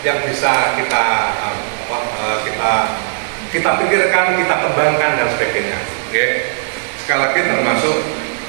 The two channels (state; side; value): silent; left; digital silence